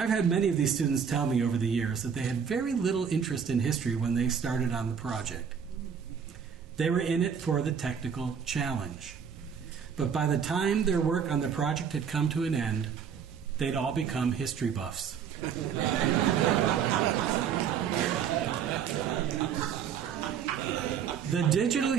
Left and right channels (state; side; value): quieter; left; 7.3 dB